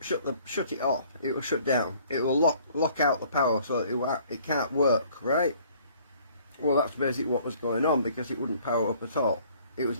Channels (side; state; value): both; inverted; correlation -0.57